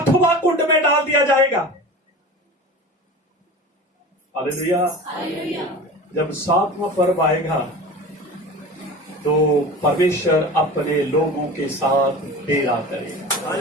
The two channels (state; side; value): normal; both; correlation 0.34